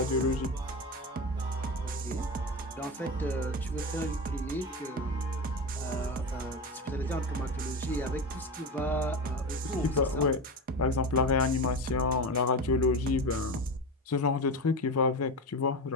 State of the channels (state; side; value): normal; both; correlation 0.22